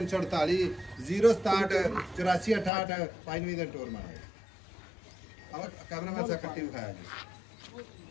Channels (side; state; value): right; drops out; at 2.7 s